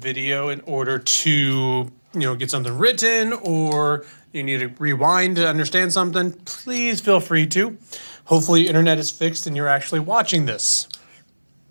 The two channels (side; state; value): both; inverted; correlation -1.00